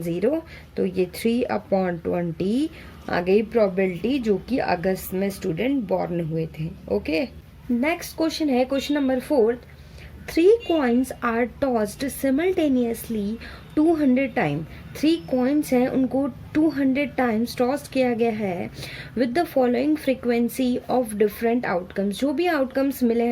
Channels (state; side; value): identical; both; correlation 1.00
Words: 0, तो ये 3/20 आ गई प्रोबेबिलिटी, जो कि अगस्त में स्टूडेंट बॉर्न हुए थे। ओके, नेक्स्ट क्वेश्चन है question number 4। 3 coins are tossed simultaneously 200 time. 3 coins हैं, उनको 200 टाइम्स टॉस किया गया है with the following frequency of different outcomes. जो भी आउटकम्स मिले